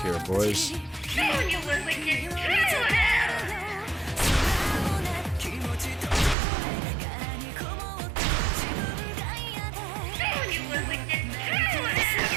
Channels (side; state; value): left; drops out; at 6.4 s